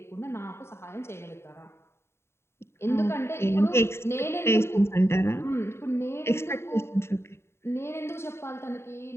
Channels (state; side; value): late; right; 0.12 ms